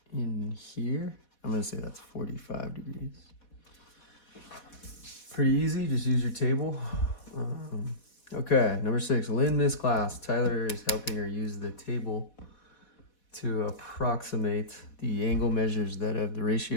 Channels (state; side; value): late; right; 4.1 ms